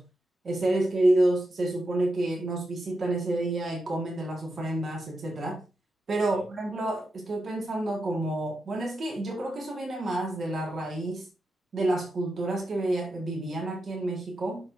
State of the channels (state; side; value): normal; both; correlation 0.87